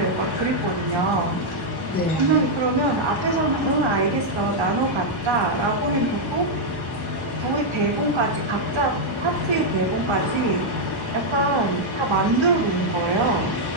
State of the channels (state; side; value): normal; both; correlation -0.02